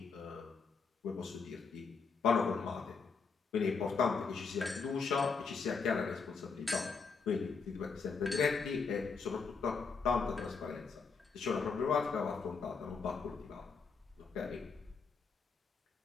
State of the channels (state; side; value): quieter; right; 5.1 dB